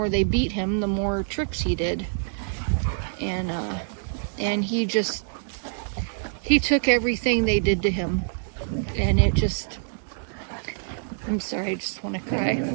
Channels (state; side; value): silent; left; digital silence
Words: they beat him, the more tricks he did. And he took everything they did to him, and it just, I'm sorry, I just want to